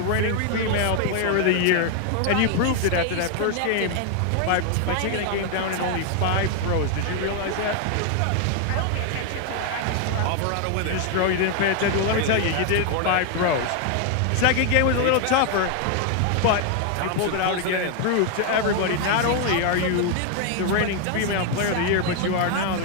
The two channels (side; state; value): both; different; correlation 0.00